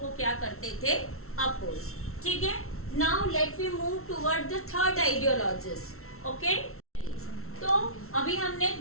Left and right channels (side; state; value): right; late; 0.63 ms